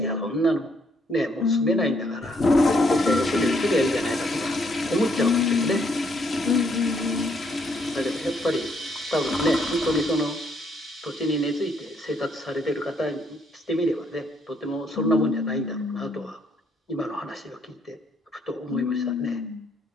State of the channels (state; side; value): normal; both; correlation 0.71